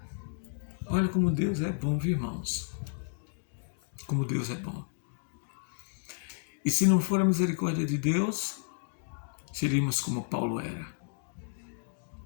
Olha como Deus é bom, viu, irmãos? Como Deus é bom. E se não for a misericórdia de Deus, seríamos como Paulo era.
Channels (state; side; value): silent; right; digital silence